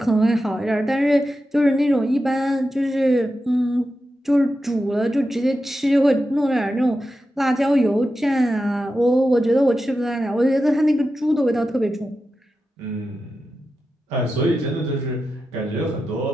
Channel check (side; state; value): both; normal; correlation 0.90